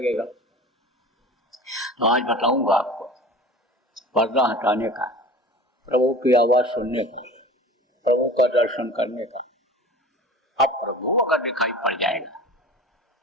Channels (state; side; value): normal; both; correlation 0.38